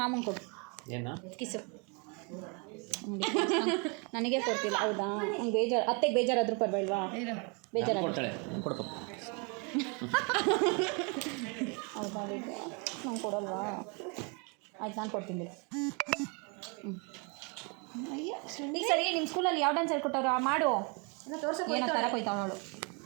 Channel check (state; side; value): quieter; left; 33.5 dB